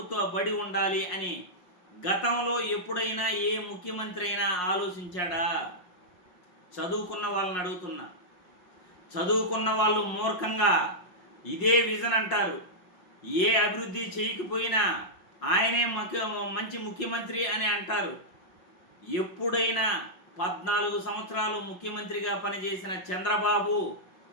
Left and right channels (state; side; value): late; right; 5.5 ms